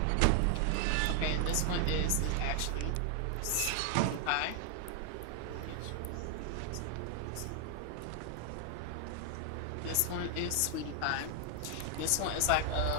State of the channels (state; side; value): different; both; correlation 0.00